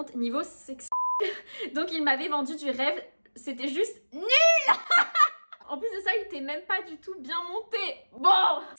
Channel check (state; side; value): inverted; both; correlation -1.00